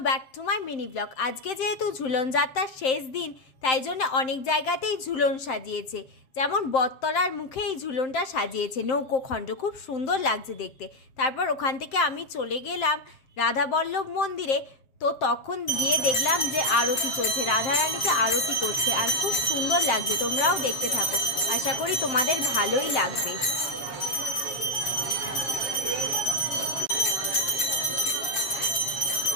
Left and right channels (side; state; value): right; late; 7.6 ms